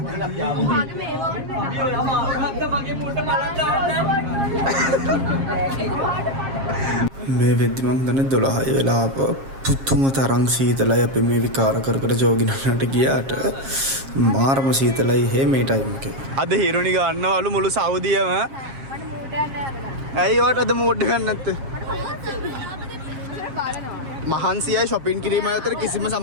මේ වෙද්දි මං දන්නේ 12 වෙලා පුතුම තරම් සීතලයි අපි මේ විකාර කර කර ජෝගිනන්නට ගියාට මාරම සීතලයි හේ මේ ටයිම් එකේ. අද හිරුනි ගන්නවලු මුළු සෞදියම. ඇයි වට අද මූඩ් එකක් නැත්තේ? මහන්සියයි shopping කිරීම අතර කිසිම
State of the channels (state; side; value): late; left; 7.4 ms